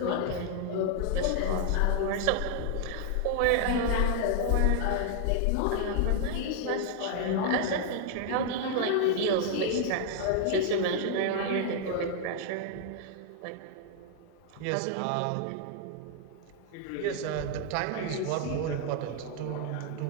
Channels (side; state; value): both; different; correlation 0.00